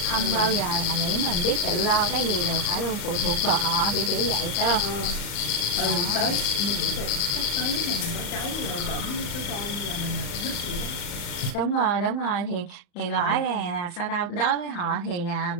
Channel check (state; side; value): late; right; 35 ms